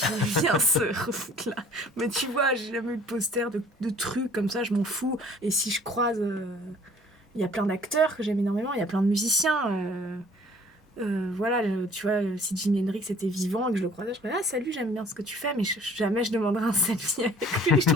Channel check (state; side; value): normal; both; correlation 0.54